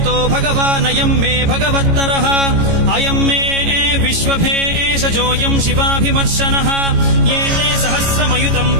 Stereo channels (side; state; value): left; late; 18 ms